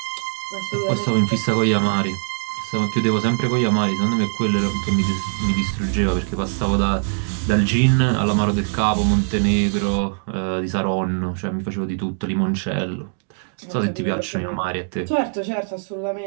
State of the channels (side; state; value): left; silent; digital silence